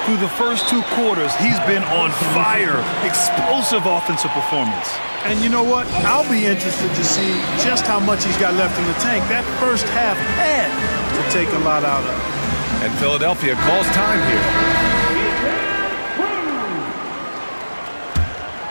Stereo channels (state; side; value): inverted; both; correlation -1.00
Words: Through the first 2 quarters, he's been on fire. Explosive offensive performance. And you know what? I'll be interested to see just how much he's got left in the tank. That first half had to take a lot out of. And Philadelphia calls time here.